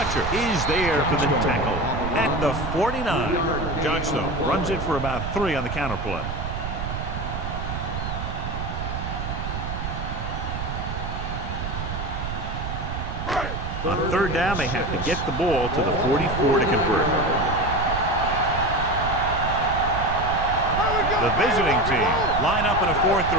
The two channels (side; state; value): right; noise; rumble, 5 dB below the sound